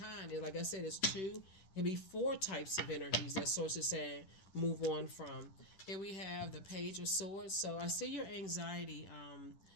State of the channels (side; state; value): right; late; 10 ms